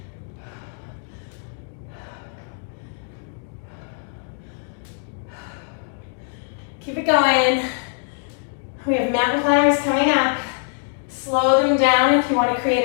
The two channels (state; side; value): silent; right; digital silence